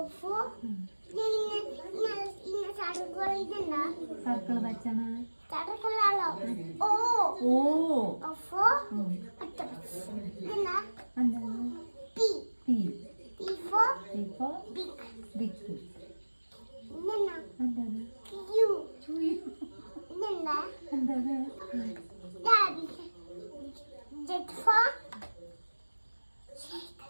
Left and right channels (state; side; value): inverted; both; correlation -1.00